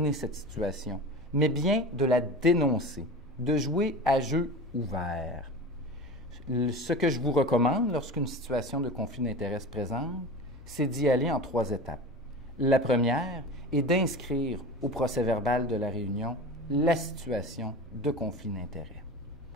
cette situation, mais bien de la dénoncer, de jouer à jeu ouvert. Ce que je vous recommande lorsqu'une situation de conflit d'intérêts se présente, c'est d'y aller en 3 étapes. La première est d'inscrire au procès-verbal de la réunion la situation de conflit d'intérêts.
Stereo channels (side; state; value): both; normal; correlation 0.32